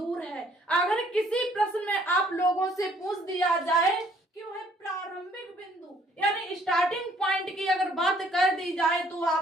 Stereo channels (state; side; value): normal; both; correlation 0.62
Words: है। अगर किसी प्रश्न में आप लोगों से पूछ दिया जाए कि वह प्रारंभिक बिंदु यानी स्टार्टिंग पॉइंट की अगर बात कर दी जाए तो